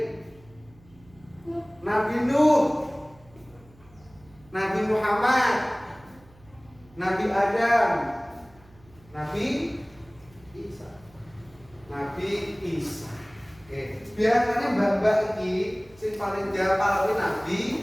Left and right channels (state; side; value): noise; right; hum, 26 dB below the sound